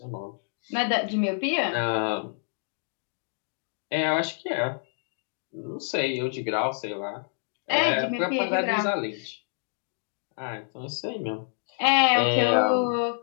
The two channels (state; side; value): silent; right; 60 dB below the other